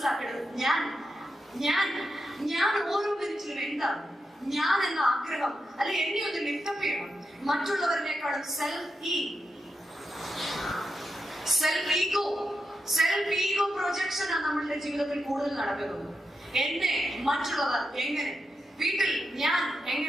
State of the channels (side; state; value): both; normal; correlation 0.87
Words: ഞാൻ ഓരോ മിനിറ്റിലും എന്താണ് ഞാൻ എന്ന ആഗ്രഹം അല്ലെ എന്നെ ഒന്ന് ലിഫ്റ്റപ്പ് ചെയ്യണം. മറ്റുള്ളവരിനേക്കാളും സെൽഫ് ഈഗോ പ്രൊജക്ഷൻ ആണ് നമ്മളുടെ ജീവിതത്തിൽ കൂടുതൽ നടക്കുന്നത്. എന്നെ മറ്റുള്ളവർ എങ്ങനെ, വീട്ടിൽ ഞാൻ